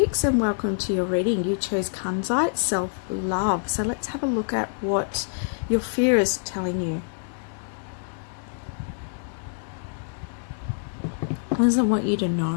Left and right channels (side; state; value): right; silent; digital silence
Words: and welcome to your reading. You chose Kunzite, self-love. So let's have a look at what your fear is telling you. What does it want you to